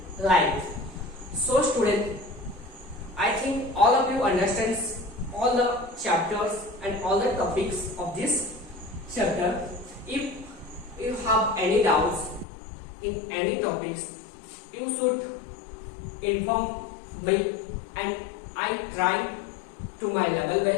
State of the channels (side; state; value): right; drops out; at 12.5 s